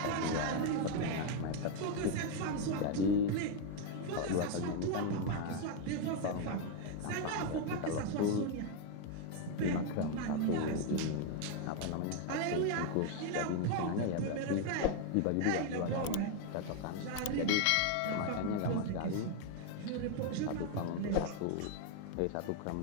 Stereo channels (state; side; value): different; both; correlation 0.01